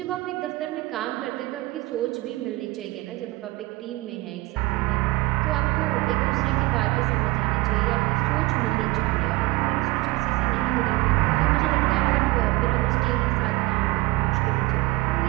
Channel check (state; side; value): quieter; left; 20.6 dB